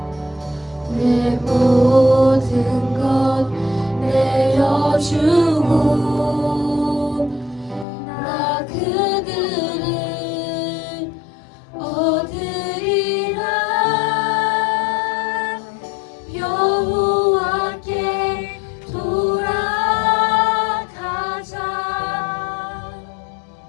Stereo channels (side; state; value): right; drops out; at 7.9 s